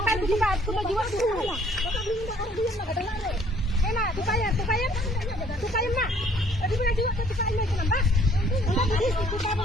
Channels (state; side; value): normal; both; correlation 0.60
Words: tupa jiwa tuh. Enak, tupain. Tupain mak. Tadi punya jiwa tupain lagi nambah. Tupa